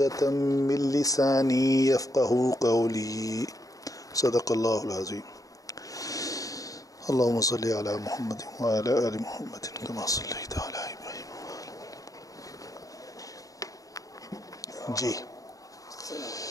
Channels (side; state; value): right; late; 0.17 ms